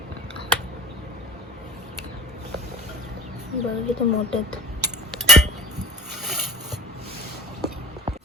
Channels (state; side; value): normal; both; correlation 0.40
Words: बघा किती मोठे आहेत.